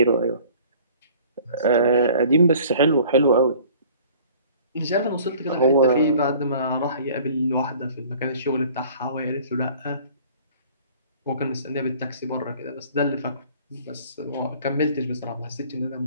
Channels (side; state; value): both; inverted; correlation -0.51